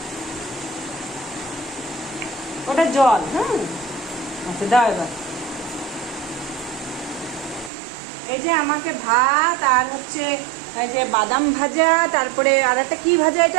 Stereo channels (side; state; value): left; drops out; at 7.7 s